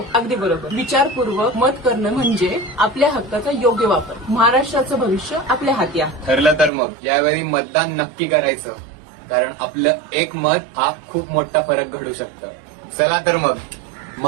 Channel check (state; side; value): drops out; left; at 6.7 s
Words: अगदी बरोबर. विचारपूर्वक मत करणं म्हणजे आपल्या हक्काचा योग्य वापर. महाराष्ट्राचं भविष्य आपल्या हाती आहे. ठरलं तर मग यावेळी मतदान नक्की करायचं, कारण आपलं एक मत हा खूप मोठा फरक घडू शकतं. चला तर मग